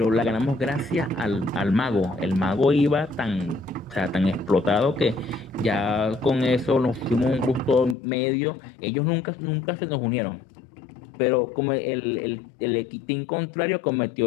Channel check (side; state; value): right; drops out; at 8.0 s